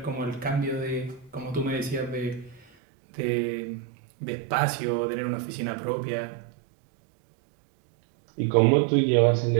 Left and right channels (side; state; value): left; drops out; at 2.7 s